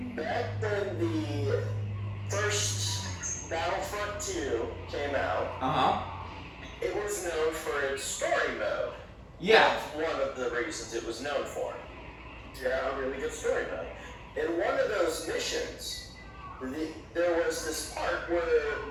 Back when the first Battlefront 2 came out, Uh-huh. it was known for its story mode. Yeah. That's one of the reasons it was known for. Yeah, a really good story mode. In one of those missions, there was this part where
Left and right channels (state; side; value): identical; both; correlation 1.00